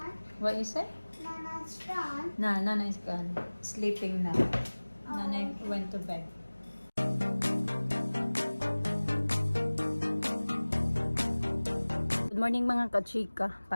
What you say? Nana's gone. Nana is gone. Sleeping now. Nana went to bed. Good morning mga kachika.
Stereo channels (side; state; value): both; inverted; correlation -1.00